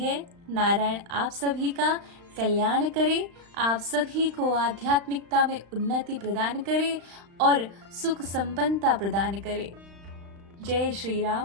नारायण आप सभी का कल्याण करे, आप सभी को आध्यात्मिकता में उन्नति प्रदान करे और सुख संपन्नता प्रदान करे। जय श्री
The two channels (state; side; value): late; left; 35 ms